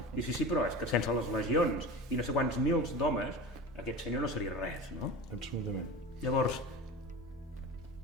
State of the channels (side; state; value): both; normal; correlation 0.31